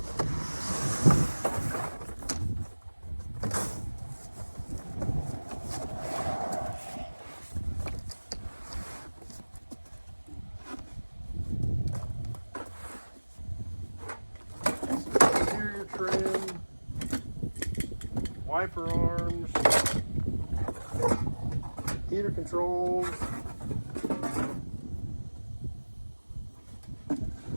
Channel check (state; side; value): inverted; both; correlation -1.00